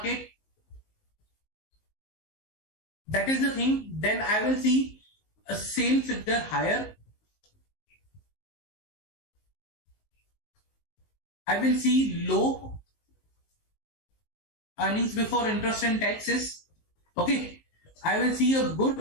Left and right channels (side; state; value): right; late; 19 ms